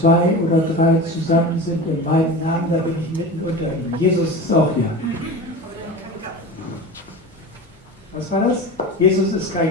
oder drei zusammen sind in meinem Namen, da bin ich mitten unter ihnen. Jesus ist auch hier. Was war das? Jesus ist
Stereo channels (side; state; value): both; normal; correlation 0.30